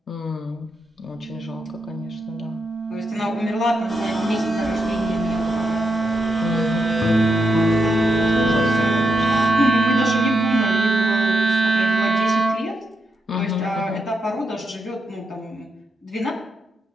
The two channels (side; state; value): both; normal; correlation 0.83